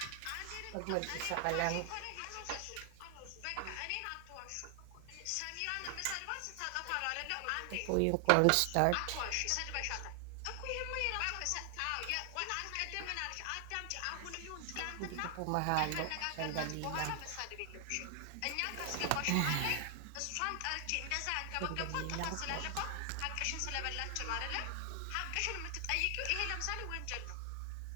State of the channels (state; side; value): different; both; correlation 0.00